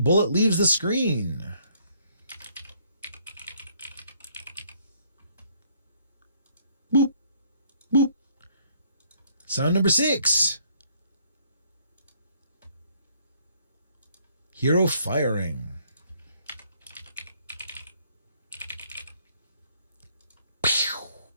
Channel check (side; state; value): both; inverted; correlation -0.66